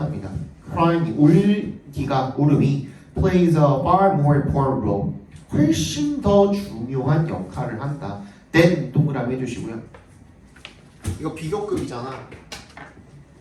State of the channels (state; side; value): identical; both; correlation 1.00